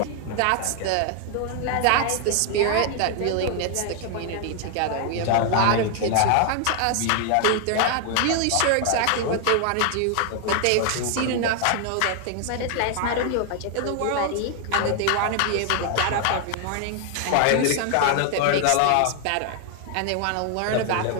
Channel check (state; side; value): different; both; correlation 0.00